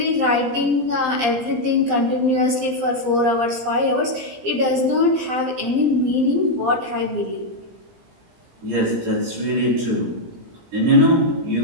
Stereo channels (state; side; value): late; left; 17 ms